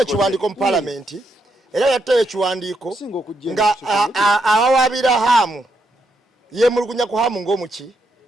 mu parliament era yatuteye ekiwandiiko nga awawabira hamu yemulugunya ku hamu ng'omuki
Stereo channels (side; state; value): both; normal; correlation 0.80